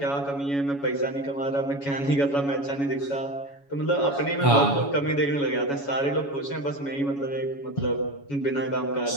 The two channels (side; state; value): right; late; 7.1 ms